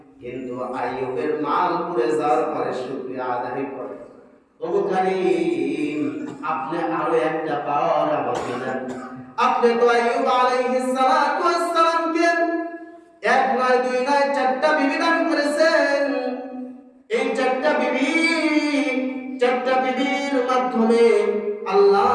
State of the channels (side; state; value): both; identical; correlation 1.00